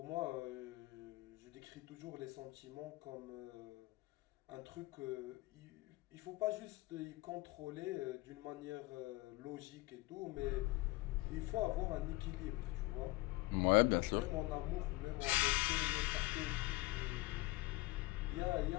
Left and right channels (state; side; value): quieter; right; 21.3 dB